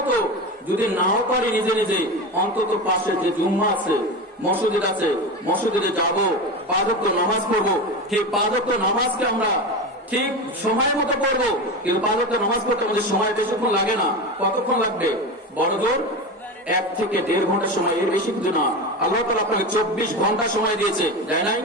যদি নাও পারি নিজে নিজে, অন্তত পাশে যে জুম্মা আছে মসজিদ আছে, মসজিদে যাব, 5 ওয়াক্ত নামাজ পড়বো। ঠিক 5 ওয়াক্ত নামাজকে আমরা ঠিক সময়ের মতো পড়বো, কিন্তু 5 ওয়াক্ত নামাজ পড়তে আমাদের সময় বেশিক্ষণ লাগে না। কতক্ষণ লাগবে? বড় জোর 1 থেকে 1.5 ঘন্টা সময়, এর বেশি কিছু না। আল্লাহ তাআলা আপনাকে 24 ঘন্টা সময় দিয়েছে, দেয় নাই?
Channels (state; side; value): normal; both; correlation 0.23